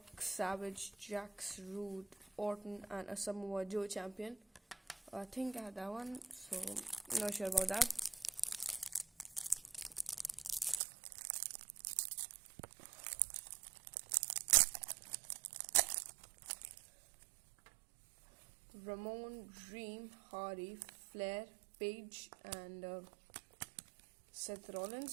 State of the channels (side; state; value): left; drops out; at 10.8 s